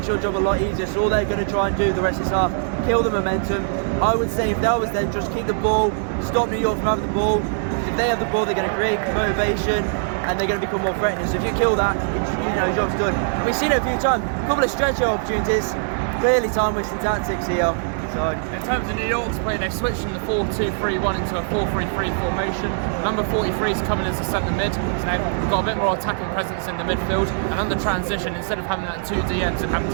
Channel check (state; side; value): silent; left; digital silence